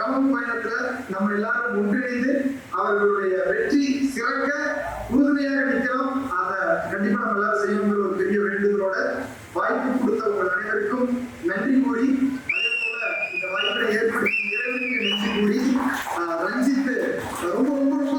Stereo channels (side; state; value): both; identical; correlation 1.00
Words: பயணத்துல நம்ம எல்லாரும் ஒன்றிணைந்து அவர்களுடைய வெற்றி சிறக்க உறுதுணையாக நிற்கிறோம். அதை கண்டிப்பா நம்ம எல்லாரும் செய்யணுங்கிற ஒரு பெரிய வேண்டுதலோட வாய்ப்பு கொடுத்த உங்கள் அனைவருக்கும் நன்றி கூறி, அதே போல இந்த வாய்ப்பை ஏற்படுத்தி இறைவனுக்கு நன்றி கூறி, ரஞ்சித் ரொம்ப ரொம்ப ரொம்ப